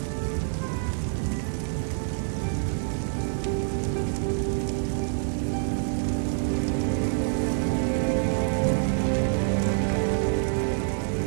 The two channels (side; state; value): left; silent; 60 dB below the other